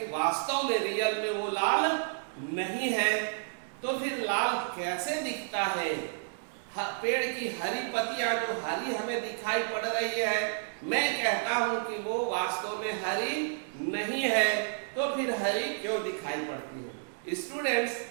वास्तव में रियल में वो लाल नहीं है। तो फिर लाल कैसे दिखता है? पेड़ की हरी पत्तियां जो हरी हमें दिखाई पड़ रही है, मैं कहता हूं कि वो वास्तव में हरी नहीं है। तो फिर हरी क्यों दिखाई पड़ती है? स्टूडेंट्स,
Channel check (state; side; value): silent; left; digital silence